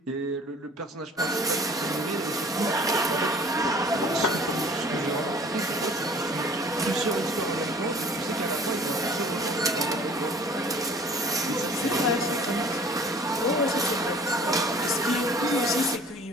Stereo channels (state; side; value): normal; both; correlation 0.49